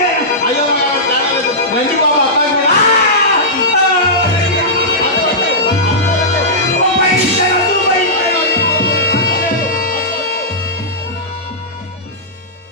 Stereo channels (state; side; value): normal; both; correlation -0.14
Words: అయ్యో రండి బాబా,